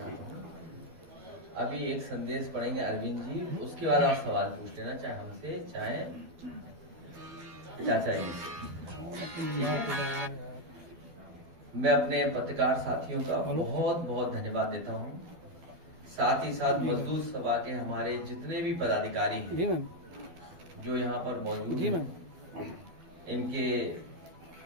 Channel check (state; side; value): late; left; 12 ms